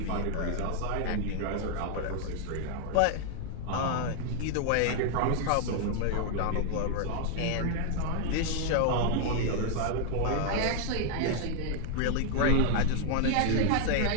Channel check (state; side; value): different; both; correlation 0.00